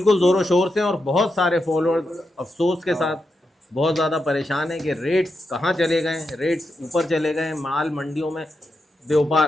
ज़ोरों शोर से और बहुत सारे फॉलोअर्स अफसोस के साथ बहुत ज़्यादा परेशान है कि रेट्स कहाँ चले गए, रेट्स ऊपर चले गए, माल मंडियों में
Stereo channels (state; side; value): normal; both; correlation 0.86